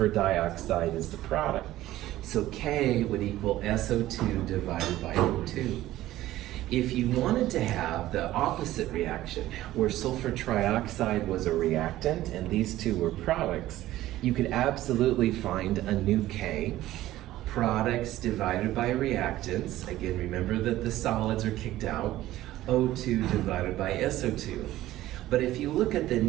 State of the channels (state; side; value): quieter; left; 15.1 dB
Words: dioxide is the product. So K would equal SO2 divided by O2. If you wanted to have the opposite reaction, where sulfur trioxide was a reactant and these two were products, you could absolutely find a new K, products divided by reactants. Again, remember that the solids are kicked out, O2 divided by SO2. But if you look at the